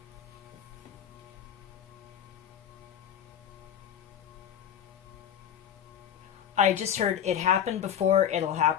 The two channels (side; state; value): right; quieter; 9.7 dB